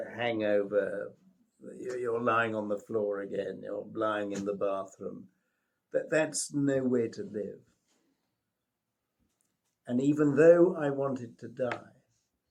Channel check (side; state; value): both; identical; correlation 1.00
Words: hangover, you're lying on the floor again, you're lying in the bathroom, that's no way to live. And even though I wanted to die,